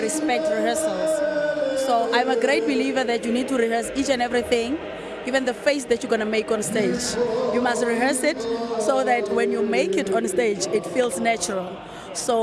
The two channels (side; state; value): both; identical; correlation 1.00